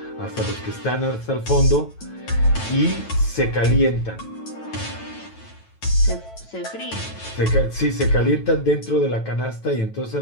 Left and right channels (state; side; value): late; right; 9.1 ms